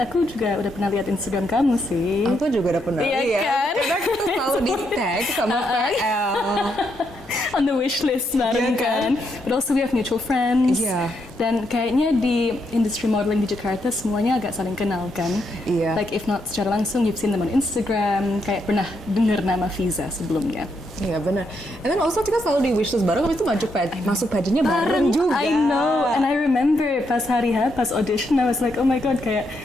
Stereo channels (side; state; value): both; normal; correlation 0.79